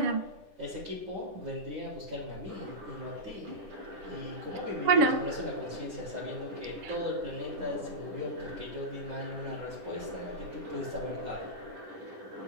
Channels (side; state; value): left; late; 10 ms